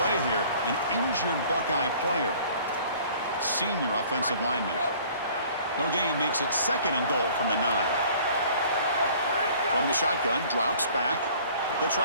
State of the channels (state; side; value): inverted; both; correlation -0.52